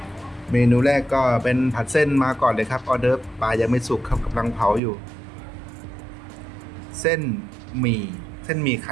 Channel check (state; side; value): drops out; left; at 4.8 s